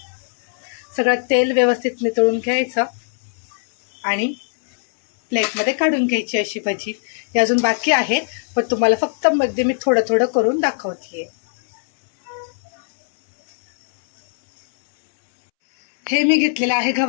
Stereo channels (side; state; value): right; silent; 66 dB below the other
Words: सगळं तेल व्यवस्थित नितळून घ्यायचं आणि प्लेटमध्ये काढून घ्यायची अशी भजी. ही अजून बाकी आहे पण तुम्हाला फक्त मध्ये मी थोडं थोडं करून दाखवते. हे मी घेतलेलं आहे